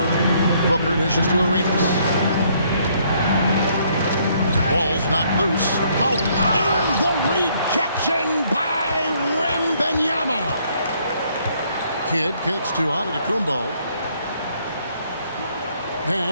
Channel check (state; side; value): inverted; both; correlation -0.67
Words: it. Booker dishes to Arenas. Ball's not loose. Out. And the rejection by Wembanyama. Kidd kicks to Antetokounmpo.